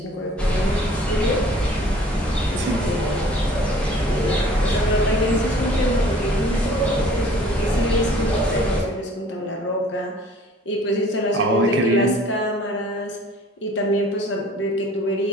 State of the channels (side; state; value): both; normal; correlation 0.52